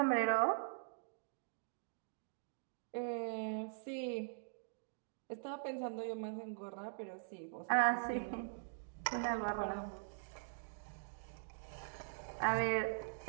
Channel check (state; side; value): silent; left; digital silence